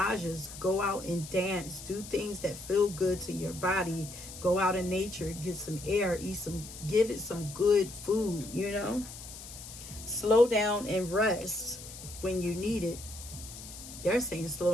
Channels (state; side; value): noise; left; hiss, 13 dB below the sound